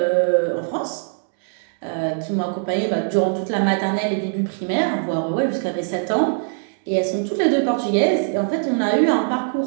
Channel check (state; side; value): silent; left; digital silence